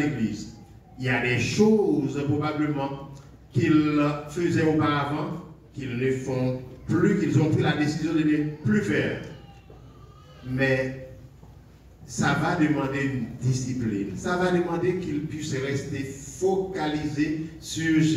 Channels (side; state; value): both; identical; correlation 1.00